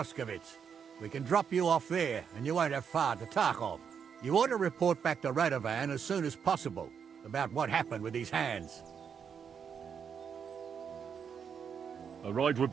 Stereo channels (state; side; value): quieter; left; 7.1 dB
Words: We can drop you off there, and you won't have far to Tarkov. You ought to report back to Radovan as soon as possible about what happened with these hands. A ride would